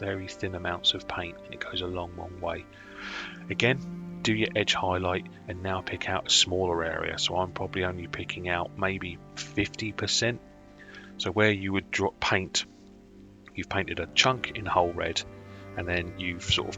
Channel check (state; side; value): identical; both; correlation 1.00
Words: amounts of paint, and it goes a long way. Again, do your edge highlight and now pick out a smaller area. So I'm probably only picking out maybe 50%. So where you would paint, you've painted a chunk in whole red, and then you've sort